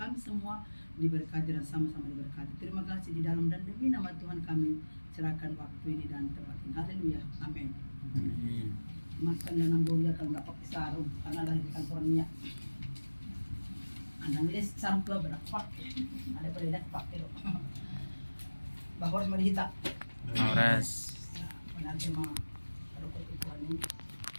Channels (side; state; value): both; inverted; correlation -1.00